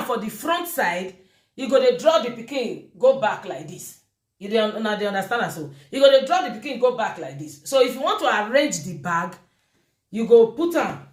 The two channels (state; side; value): identical; both; correlation 1.00